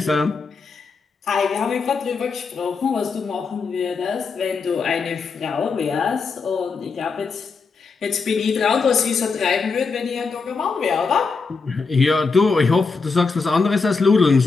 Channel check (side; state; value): right; quieter; 4.7 dB